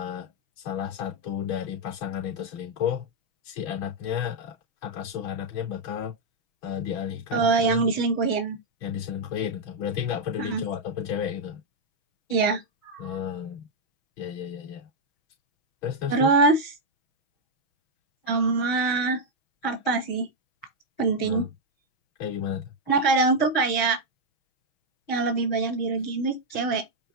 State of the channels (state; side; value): late; right; 6.2 ms